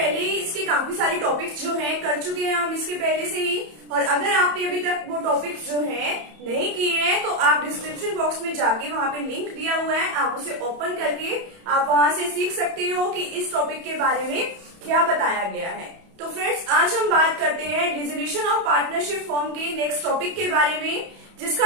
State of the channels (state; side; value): late; left; 31 ms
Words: ही इसके काफी सारे टॉपिक्स जो हैं कर चुके हैं हम इसके पहले से ही। और अगर आपने अभी तक वो टॉपिक्स जो हैं नहीं किए हैं तो आप डिस्क्रिप्शन बॉक्स में जाके वहां पे लिंक दिया हुआ है, आप उसे ओपन करके आप वहां से सीख सकते हो कि इस टॉपिक के बारे में क्या बताया गया है। तो फ्रेंड्स, आज हम बात करते हैं डिसोल्यूशन ऑफ पार्टनरशिप फॉर्म के नेक्स्ट टॉपिक के बारे में, जिसका